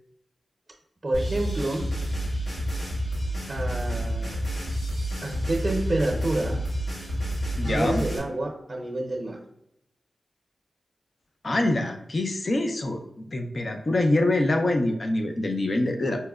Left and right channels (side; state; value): both; normal; correlation 0.92